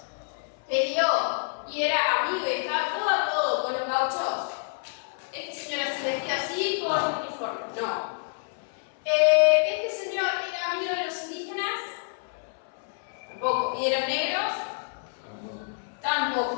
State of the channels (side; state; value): right; silent; 56 dB below the other